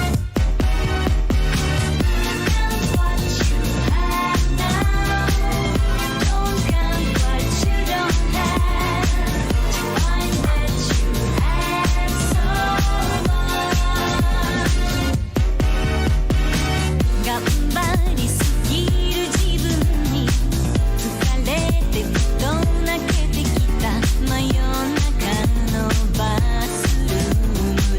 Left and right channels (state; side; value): identical; both; correlation 1.00